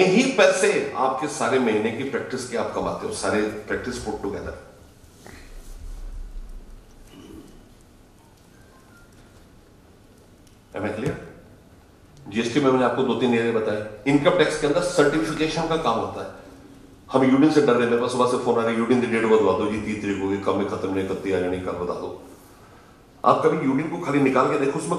ही पैसे आपके सारे महीने की प्रैक्टिस के आप कमाते हो, सारे practice put together. Am I clear? GST में मैंने आपको 2-3 एरिया बताए। इनकम टैक्स के अंदर सर्टिफिकेशन का काम होता है। हम यूनियन से डर रहे हैं, मेरे पास सुबह से फोन आ रहा है, यूनियन की डेट बदलवा दो जी, 30 तारीख होगी, कब में खत्म नहीं करती आ जानी, कल बता दो। आप कभी यूनियन को खाली निकाल के देखो, उसमें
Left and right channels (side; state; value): both; identical; correlation 1.00